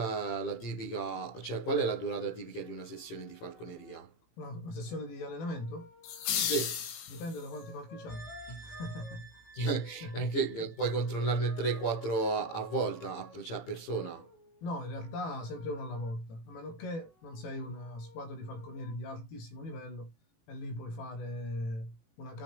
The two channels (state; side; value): late; right; 18 ms